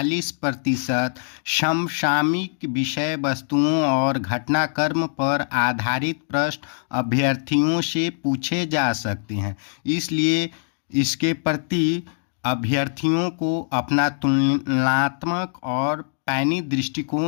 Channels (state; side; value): silent; right; digital silence